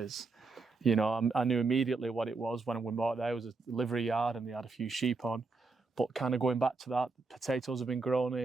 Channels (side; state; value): left; quieter; 4.0 dB